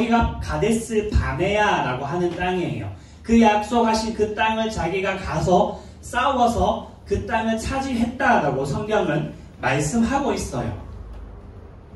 가데스 바네아라고 하는 땅이에요. 그 약속하신 그 땅을 자기가 가서 싸워서 그 땅을 차지했다라고 성경은 말씀하고 있어요.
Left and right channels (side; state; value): both; identical; correlation 1.00